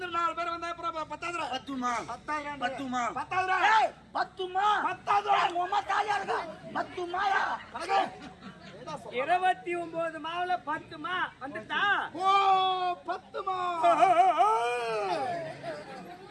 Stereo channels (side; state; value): both; identical; correlation 1.00